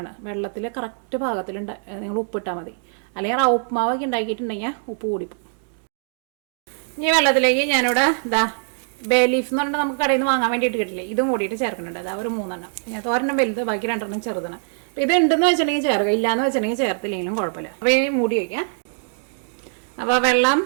വെള്ളത്തിൽ കറക്റ്റ് പാകത്തിൽ നിങ്ങൾ ഉപ്പിട്ടാൽ മതി. അല്ലെങ്കിൽ റവ ഉപ്മാവൊക്കെ ഉണ്ടാക്കിയിട്ടുണ്ടെങ്കിൽ ഉപ്പ് കൂടിപ്പോകും. ഈ വെള്ളത്തിലേക്ക് ഞാനിവിടെ ബേ ലീഫ് എന്ന് പറഞ്ഞാൽ നമുക്ക് കടയിൽ നിന്ന് വാങ്ങാൻ വേണ്ടിയിട്ട് കിട്ടില്ലേ, ഇതും കൂടിയിട്ട് ചേർക്കുന്നുണ്ട്. ഒരു 3 എണ്ണം. ഞാൻ 1 വലുത്, ബാക്കി 2 ചെറുതാണ്. അപ്പോൾ ഇത് ഉണ്ടെന്ന് വെച്ചിട്ടുണ്ടെങ്കിൽ ചേർക്കുക, ഇല്ലയെന്ന് വെച്ചിട്ടുണ്ടെങ്കിൽ ചേർത്തില്ലെങ്കിലും കുഴപ്പമില്ല. അപ്പോൾ ഈ മൂടി വയ്ക്കാം. അപ്പോൾ വെള്ളം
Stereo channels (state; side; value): silent; left; digital silence